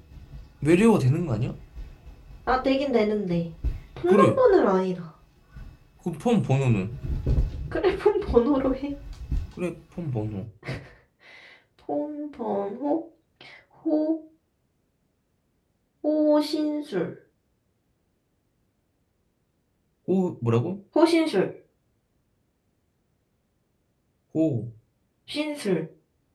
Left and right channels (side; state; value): both; identical; correlation 1.00